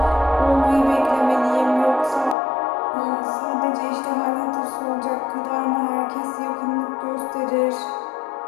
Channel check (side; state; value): right; drops out; at 2.4 s